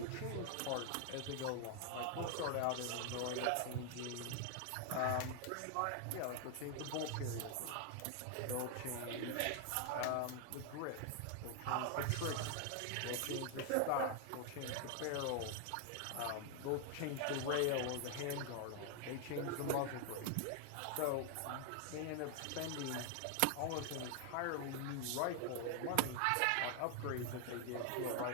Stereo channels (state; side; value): different; both; correlation 0.00